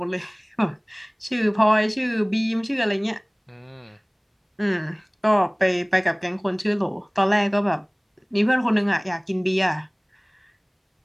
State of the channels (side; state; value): both; identical; correlation 1.00